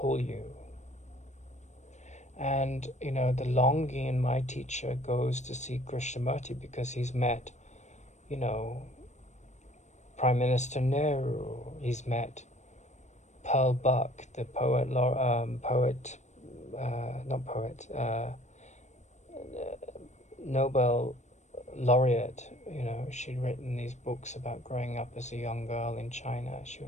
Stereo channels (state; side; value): late; right; 0.34 ms